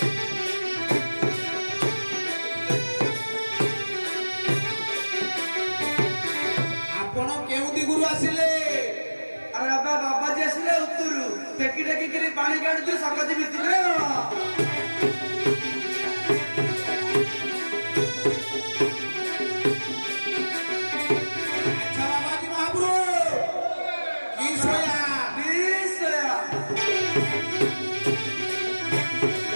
आपण केउ दिगुरु आसिले अरे बाबा बाबाजी आसिले उत्तरु टेकी टेकी करी पानी काढुछु सकती भितरे अच्छा बाबाजी महाप्रभु की सोया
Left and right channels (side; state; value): both; inverted; correlation -1.00